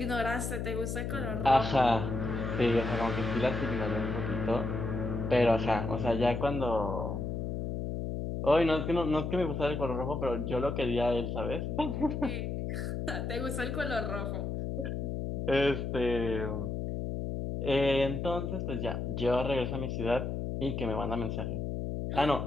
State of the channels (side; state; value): left; noise; hum, 3 dB below the sound